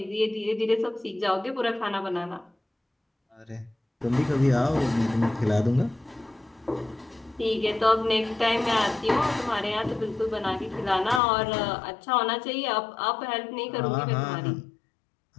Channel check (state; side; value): drops out; right; at 11.2 s